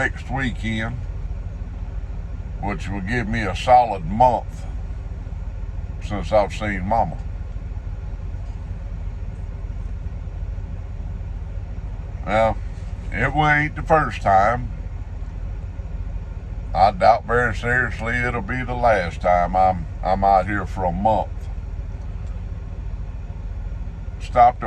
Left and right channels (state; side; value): identical; both; correlation 1.00